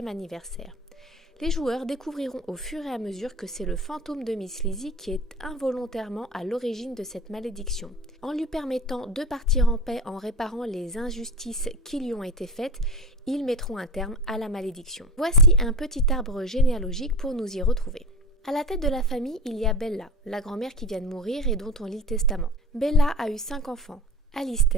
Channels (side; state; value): both; normal; correlation 0.31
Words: anniversaire. Les joueurs découvriront au fur et à mesure que c'est le fantôme de Miss Lizzie qui est involontairement à l'origine de cette malédiction. En lui permettant de partir en paix en réparant les injustices qui lui ont été faites, ils mettront un terme à la malédiction. Voici un petit arbre généalogique pour nous y retrouver. À la tête de la famille, il y a Bella, la grand-mère qui vient de mourir et dont on lit le testament. Bella a eu 5 enfants.